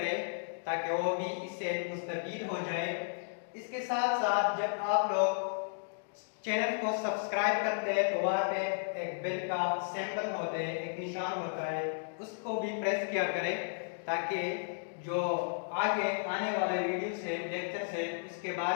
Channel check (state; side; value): silent; right; digital silence